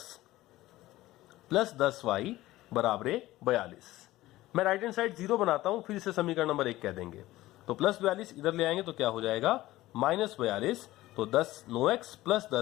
प्लस 10y बराबर 42। मैं राइट हैंड साइड 0 बनाता हूं, फिर इसे समीकरण नंबर 1 कह देंगे। तो प्लस 42 इधर ले आएंगे तो क्या हो जाएगा, -42। तो 9x प्लस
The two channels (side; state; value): right; quieter; 16.7 dB